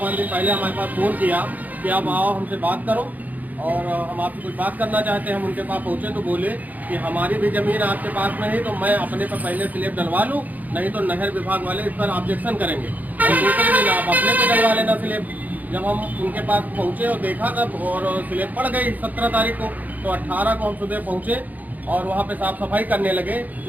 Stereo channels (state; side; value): late; left; 0.080 ms